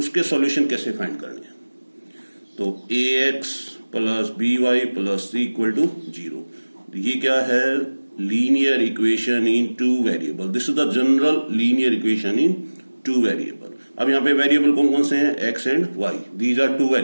सॉल्यूशन कैसे फाइंड करने हैं. तो ax plus by plus c equal to 0. ये क्या है? Linear equation in two variable. This is the general linear equation in two variable. अब यहाँ पे वेरिएबल कौन कौन से हैं? x and y. These are two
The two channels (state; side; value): inverted; both; correlation -1.00